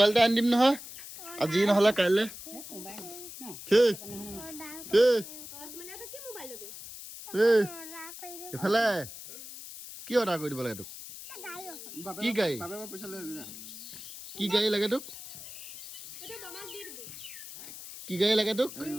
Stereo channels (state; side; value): noise; left; hiss, 12 dB below the sound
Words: এটা আনি দিম নহয় আজি নহ'লে কাইলৈ এইফালে কি অৰ্ডাৰ কৰি দিব লাগে তোক কি গাড়ী কি গাড়ী লাগে তোক কি গাড়ী লাগে তোক